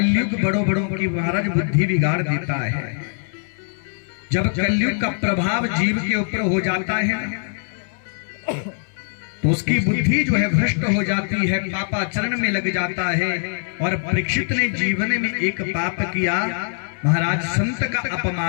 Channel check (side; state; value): right; silent; digital silence